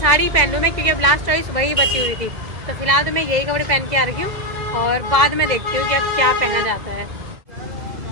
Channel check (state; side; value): late; left; 2.0 ms